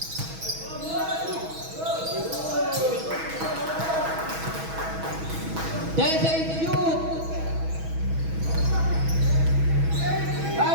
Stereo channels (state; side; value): late; left; 6.2 ms